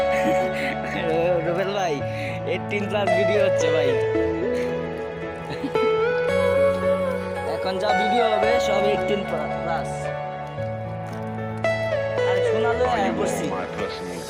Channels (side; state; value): both; identical; correlation 1.00